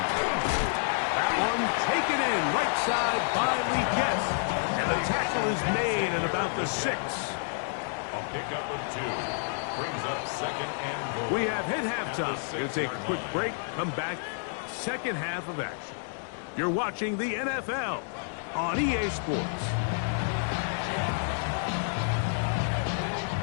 That one taken in right side by Lee Guess. And the tackle is made at about the 6. A pickup of 2. Brings up second and goal. We have hit halftime. We'll take a quick break. Come back. Second half of action. You're watching the NFL on EA Sports.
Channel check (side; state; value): right; silent; digital silence